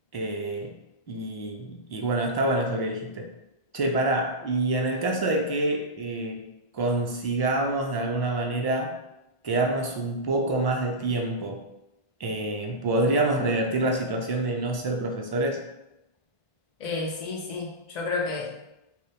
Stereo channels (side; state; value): right; late; 1.1 ms